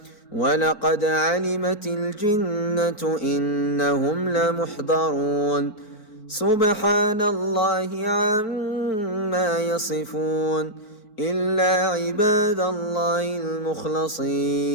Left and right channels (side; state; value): right; late; 4.2 ms